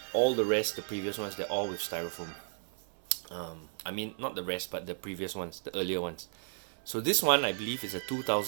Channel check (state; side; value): silent; left; 55 dB below the other